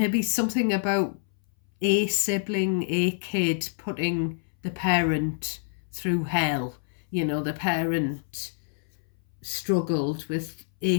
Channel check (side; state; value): right; silent; 60 dB below the other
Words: something about a sibling, a kid putting the parent through hell. The parent struggled with